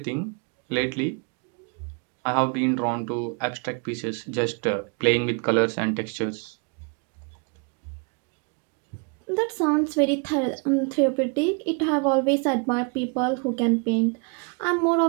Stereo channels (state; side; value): quieter; left; 35.5 dB